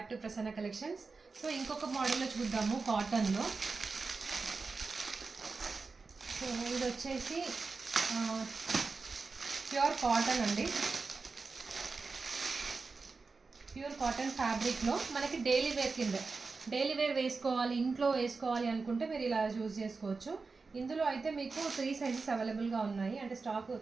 to Prasanna collections. So ఇంకొక మోడల్లో చూద్దాము కాటన్లో. సో ఇది వచ్చేసి ప్యూర్ కాటన్ అండి. ప్యూర్ కాటన్ ఫ్యాబ్రిక్లో మనకి డైలీ వేర్ కింద డైలీ వేర్ వేసుకోవాలి, ఇంట్లో వేసుకోవాలి అనుకుంటే మీరు ఇలా చూస్ చేసుకోవచ్చు. ఇందులో అయితే మీకు 3 సైజెస్ అవైలబుల్గా ఉన్నాయి. అంటే స్టాక్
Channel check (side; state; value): left; quieter; 4.3 dB